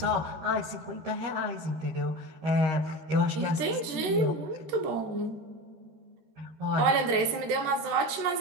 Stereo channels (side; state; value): left; late; 13 ms